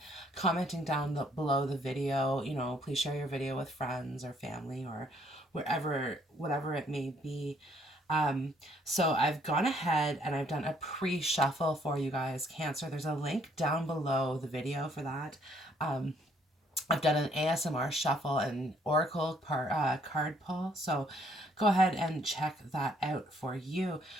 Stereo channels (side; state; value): both; normal; correlation 0.66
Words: commenting down below the video. You know, please share your video with friends or family or whatever it may be. So I've gone ahead and I've done a pre-shuffle for you guys, Cancer. There's a link down below the video for that. I've done an ASMR shuffle and oracle card pull, so go ahead and check that out for you.